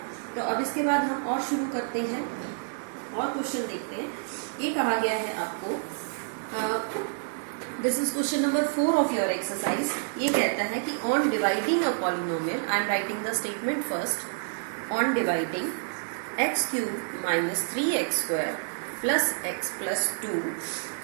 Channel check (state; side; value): silent; left; 59 dB below the other